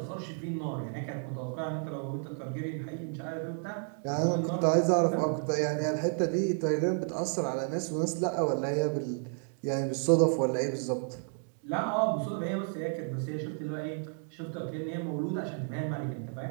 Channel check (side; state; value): left; silent; 57 dB below the other